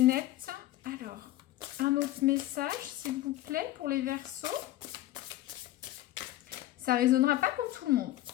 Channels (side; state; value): right; quieter; 15.3 dB